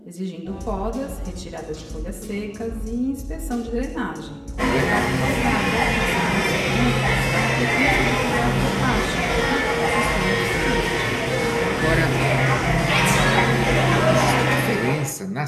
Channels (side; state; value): both; identical; correlation 1.00